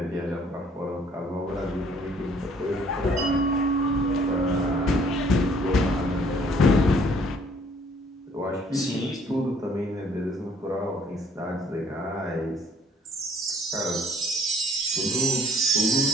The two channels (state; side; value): normal; both; correlation 0.60